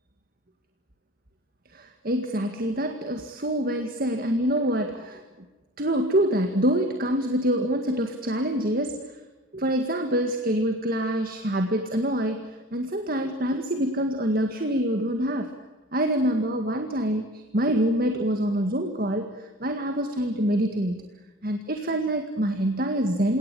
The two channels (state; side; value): normal; both; correlation 0.42